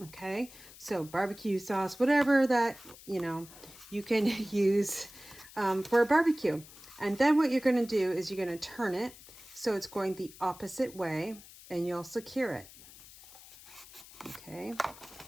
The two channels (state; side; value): noise; left; hiss, 19 dB below the sound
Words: Okay. So barbecue sauce, whatever that, you know, you can use for a barbecue. And then what you're going to do is you're going to turn it so it's going the opposite way, and you'll secure it. Okay.